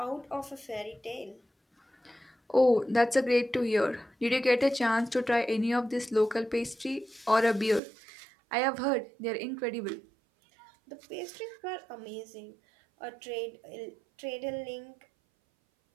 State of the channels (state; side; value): drops out; left; at 7.8 s